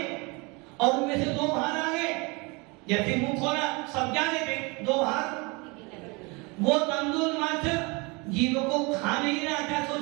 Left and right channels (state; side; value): quieter; left; 27.8 dB